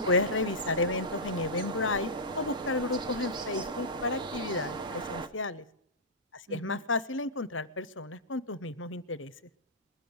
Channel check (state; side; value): normal; both; correlation -0.15